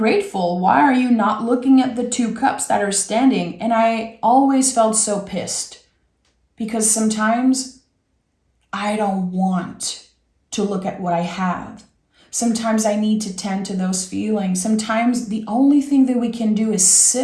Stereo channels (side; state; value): both; identical; correlation 1.00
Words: Why are you not looking at the 2 cups that are standing? And I always felt so pissed because sometimes I don't want to look at what I have. Sometimes I need to tend to those feelings. Sometimes the only thing that we can do is